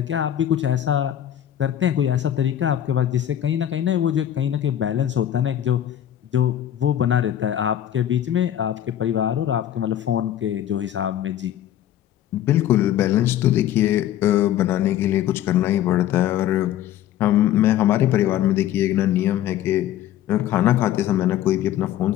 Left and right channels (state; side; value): quieter; right; 11.5 dB